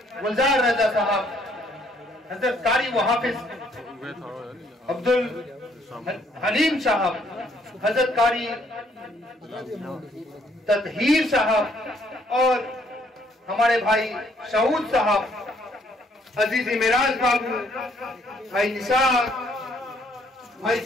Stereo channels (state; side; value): normal; both; correlation 0.66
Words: गुलजार रजा साहब, हजरत कारी व हाफिज अब्दुल हलीम साहब, हजरत कारी तदहीर साहब और हमारे भाई शहूद साहब, अजीजी मिराज बाबू, भाई निसार, भाई